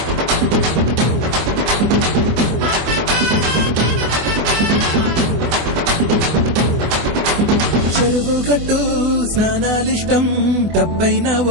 చెరువు గట్టు స్నానాలిష్టం డబ్బైనా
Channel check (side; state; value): left; late; 24 ms